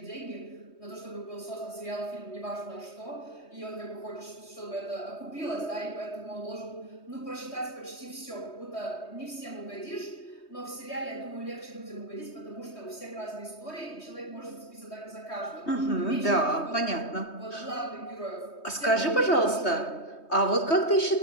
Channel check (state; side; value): late; right; 3.2 ms